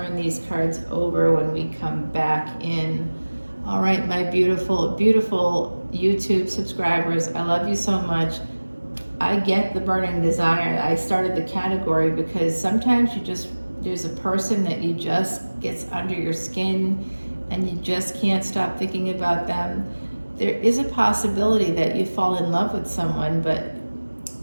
these cards over when we come back in. All right, my beautiful, beautiful YouTube subscribers, I love you so much. I get the burning desire. I started the category because sometimes there's a person that you just gets under your skin and you just can't stop thinking about them. There is a possibility that you fall in love with someone, but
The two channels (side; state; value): both; inverted; correlation -1.00